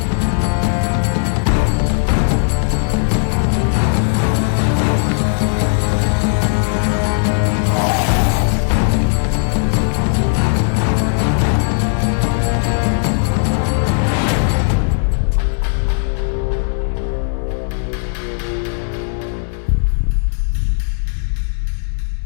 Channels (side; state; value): right; silent; digital silence